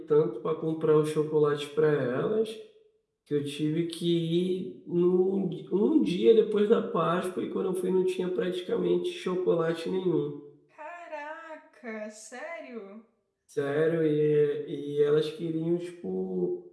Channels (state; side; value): identical; both; correlation 1.00